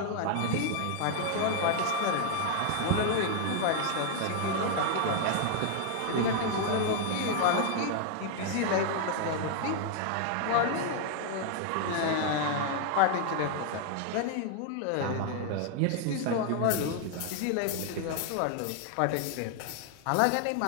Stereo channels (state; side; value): different; both; correlation 0.00